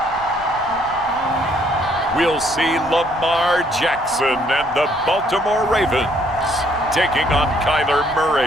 We'll see Lamar Jackson and the Baltimore Ravens taking on Kyler Murray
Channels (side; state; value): right; noise; rumble, 20 dB below the sound